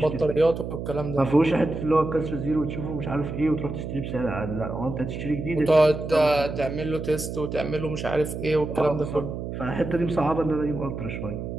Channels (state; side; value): noise; right; hum, 6 dB below the sound